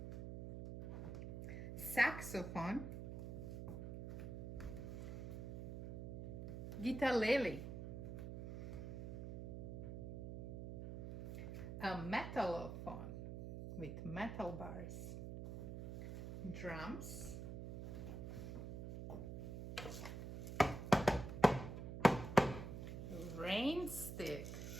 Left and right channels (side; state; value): right; noise; hum, 7 dB below the sound